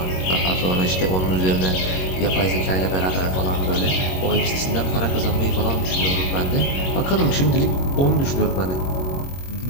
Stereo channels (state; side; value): late; right; 22 ms